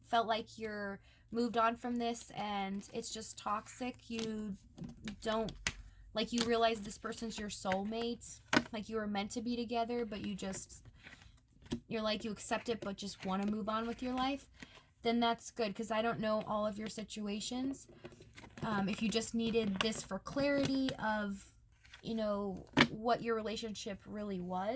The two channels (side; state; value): both; identical; correlation 1.00